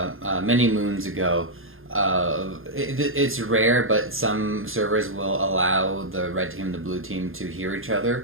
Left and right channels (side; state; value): left; late; 0.60 ms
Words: many moons ago. It's rare, but some servers will allow the red team and the blue team to hear each